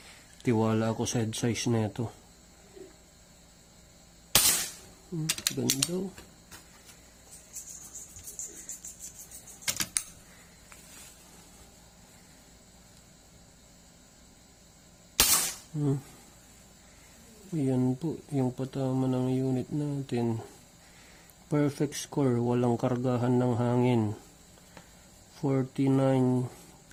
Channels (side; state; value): both; identical; correlation 1.00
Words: tiwala ako sa head size na ito. Ganda. Ayan po yung patama ng unit natin. Perfect score, walang kargahan ng hangin. 49,